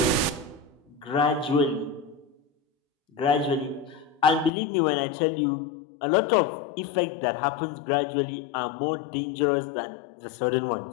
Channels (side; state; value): right; drops out; at 4.5 s